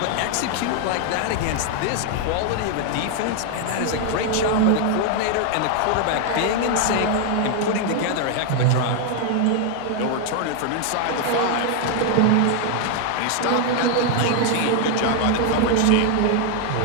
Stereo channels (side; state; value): both; different; correlation 0.00